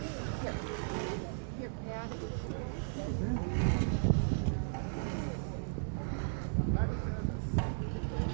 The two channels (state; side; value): silent; left; digital silence